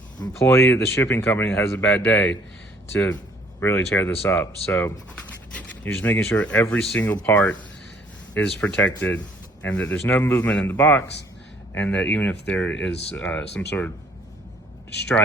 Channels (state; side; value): normal; both; correlation 0.60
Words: employee at the shipping company that has a bad day to really tear this up. So you're just making sure every single part is protected and that there's no movement in the box, and that even if there is some sort of